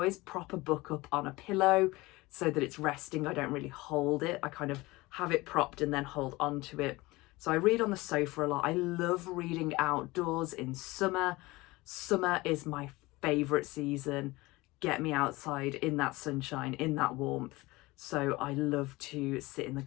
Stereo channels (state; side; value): quieter; right; 21.2 dB